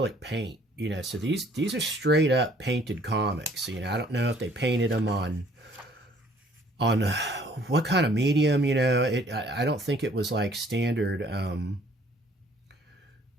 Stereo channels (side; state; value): both; normal; correlation 0.59